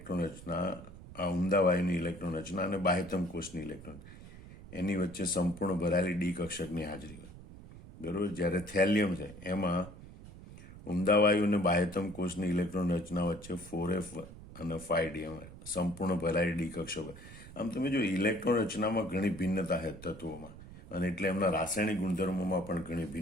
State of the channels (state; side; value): noise; right; rumble, 16 dB below the sound